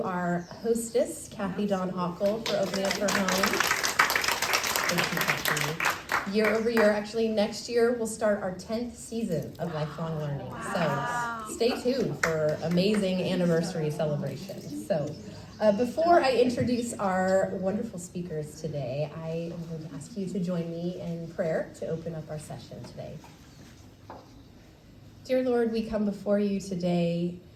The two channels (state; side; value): identical; both; correlation 1.00